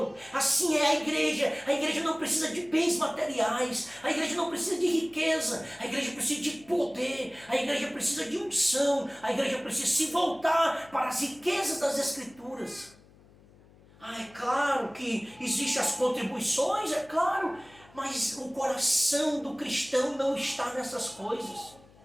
Assim é a igreja não precisa de bens materiais, a igreja não precisa de riqueza, a igreja precisa de poder, a igreja precisa de unção, a igreja precisa se voltar para as riquezas das Escrituras. É claro que existem as contribuições, é claro, mas o coração do cristão não está nessas coisas.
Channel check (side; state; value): left; noise; hum, 26 dB below the sound